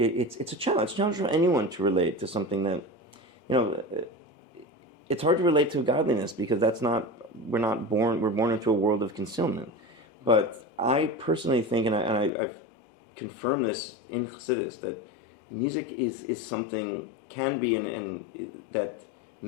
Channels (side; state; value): right; drops out; at 12.3 s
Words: a challenge. It's a challenge for anyone to relate to something that it's hard to relate to godliness because we're born into a world of concealment. But I personally think, and I've confirmed this in Chassidus, that music is something, can be, and that